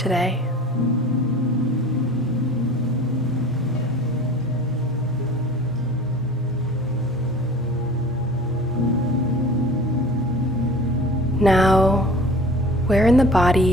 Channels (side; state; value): both; normal; correlation 0.41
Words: Now, where in the